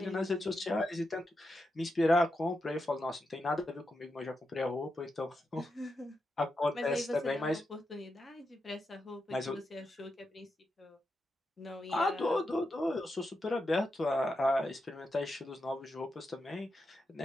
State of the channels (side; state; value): both; normal; correlation 0.87